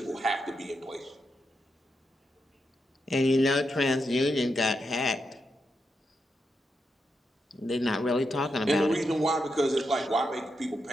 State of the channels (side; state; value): both; normal; correlation 0.84